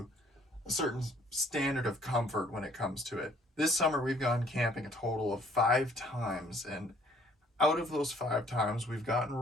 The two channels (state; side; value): normal; both; correlation 0.60